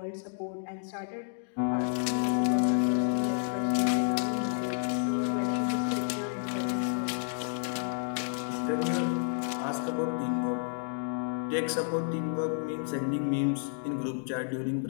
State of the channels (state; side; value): silent; right; digital silence